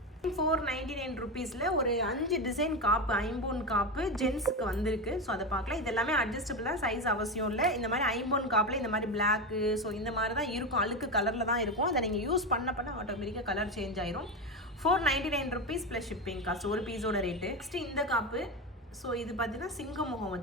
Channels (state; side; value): normal; both; correlation 0.17